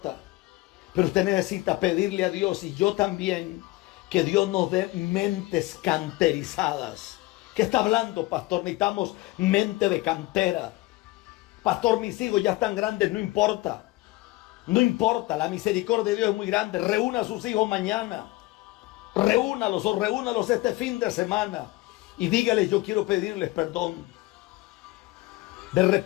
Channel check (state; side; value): quieter; right; 19.8 dB